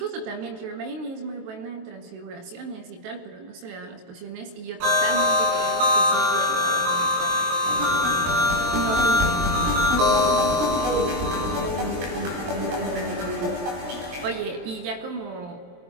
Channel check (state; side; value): late; left; 23 ms